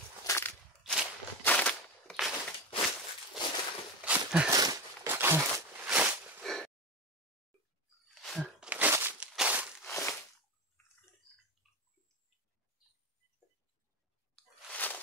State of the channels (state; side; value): normal; both; correlation 0.20